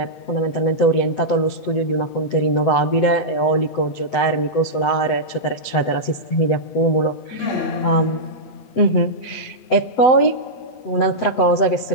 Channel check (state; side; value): late; right; 8.0 ms